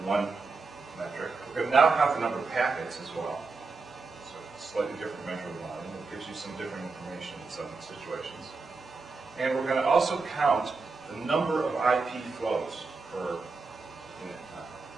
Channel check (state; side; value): quieter; left; 4.2 dB